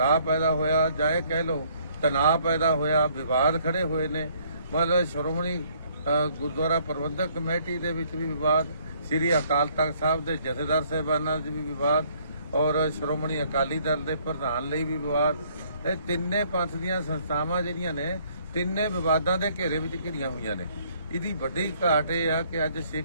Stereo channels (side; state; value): both; inverted; correlation -0.64